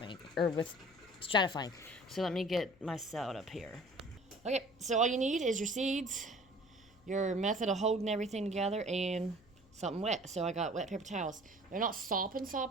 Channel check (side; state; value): left; noise; hum, 28 dB below the sound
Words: or with stratifying. So let me get my salad up here. Okay, so all you need is your seeds, your method of holding everything together, and something wet. So I got wet paper towels. They're not